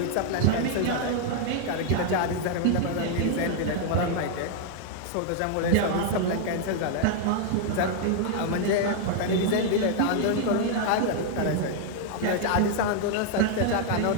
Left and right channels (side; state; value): both; different; correlation 0.00